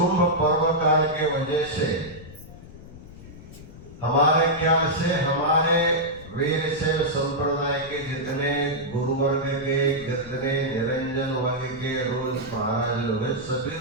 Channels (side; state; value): left; noise; rumble, 17 dB below the sound